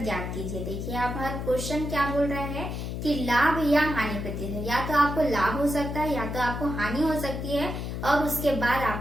ज्ञात कीजिए। देखिए आप हर क्वेश्चन क्या बोल रहा है कि लाभ या हानि प्रतिशत, या तो आपको लाभ हो सकता है या तो आपको हानि हो सकती है और उसके बाद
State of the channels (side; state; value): left; noise; hum, 5 dB below the sound